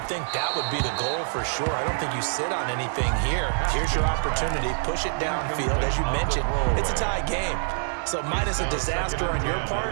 think that would be the goal for sure. I don't think you sit on anything here. Here's your opportunity. Push it downfield. As you mentioned, it's a tie game. So minus a disaster on your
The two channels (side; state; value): left; silent; digital silence